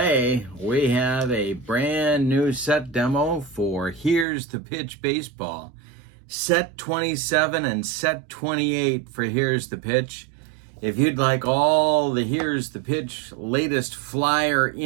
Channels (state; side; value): drops out; left; at 4.2 s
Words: we have a brand new set demo for Here's the Pitch Baseball. Set 27 and set 28 for Here's the Pitch. If you'd like all the Here's the Pitch latest flyer